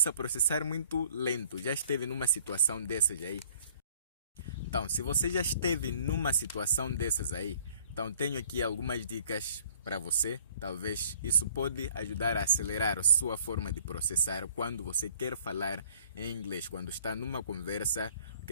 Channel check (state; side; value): inverted; both; correlation -0.56